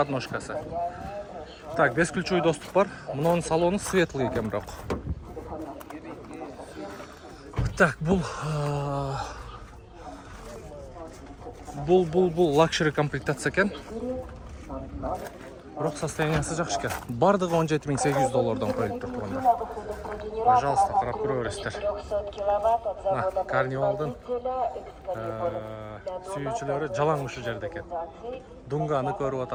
Так, бесключевой доступ бар. Мунун салону светлый экен бирок. Так, бул Luxury комплектация экен. Бирок состояниясы жакшы экен. Бардыгы $17800 коюлуптур туугандар. Пожалуйста, карап көрөбүздөр. Мына карнивалдын сүйүүчүлөрү жалаң ушул жерде экен. Дунганы көрүп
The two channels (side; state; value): both; identical; correlation 1.00